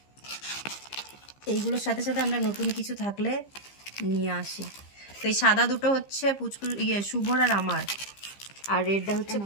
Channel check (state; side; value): late; right; 15 ms